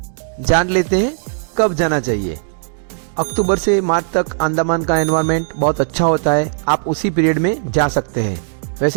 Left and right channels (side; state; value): left; silent; digital silence